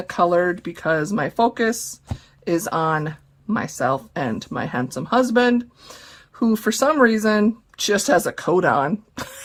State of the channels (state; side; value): identical; both; correlation 1.00